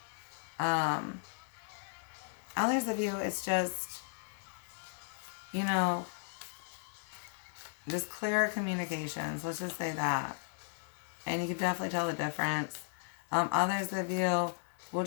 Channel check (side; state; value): right; silent; digital silence